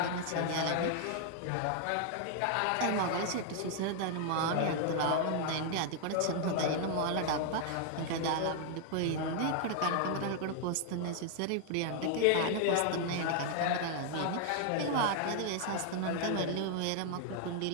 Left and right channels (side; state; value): both; different; correlation 0.00